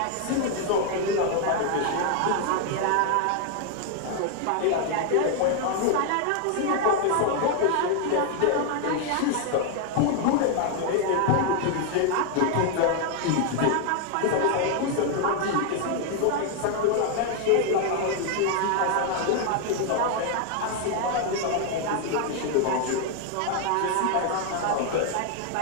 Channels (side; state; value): both; different; correlation 0.00